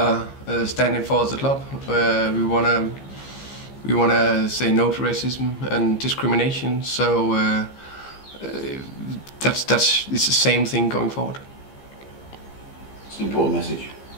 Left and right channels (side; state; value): right; late; 15 ms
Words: standing for as a club. We wanna say no to racism and discrimination. So it's the same thing going forward. It's an important message.